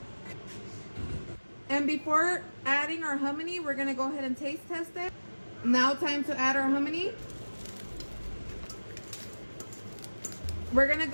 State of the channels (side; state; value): both; inverted; correlation -1.00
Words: And before adding our hominy, we're gonna go ahead and taste test it. Now time to add our hominy. We're gonna